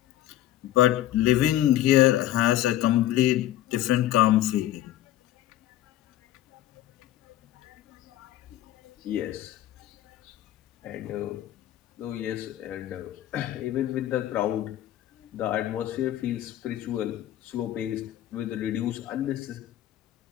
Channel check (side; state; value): right; quieter; 13.5 dB